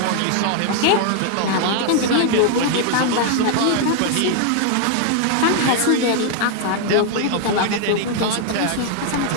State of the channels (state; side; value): different; both; correlation 0.00